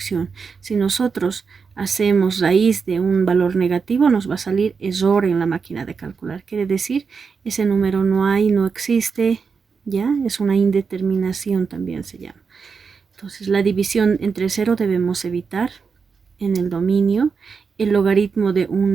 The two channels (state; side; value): quieter; left; 5.4 dB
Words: Si nosotros hacemos raíz de un valor negativo, nos va a salir error en la máquina de calcular. Quiere decir, ese número no hay, no existe, ¿ya? Es una indeterminación también se llama. Entonces, la división entre 0 debemos evitar en el dominio, el logaritmo de un